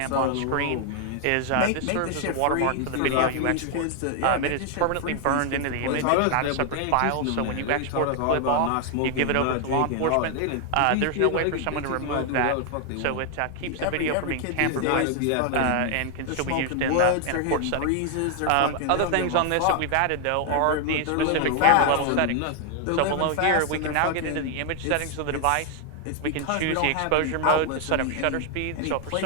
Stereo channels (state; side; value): different; both; correlation 0.00